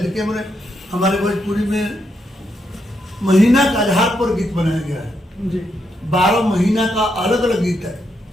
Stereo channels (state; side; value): normal; both; correlation 0.80